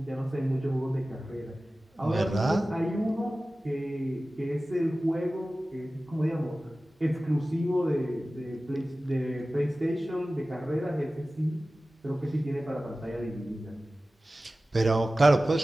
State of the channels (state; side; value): normal; both; correlation 0.96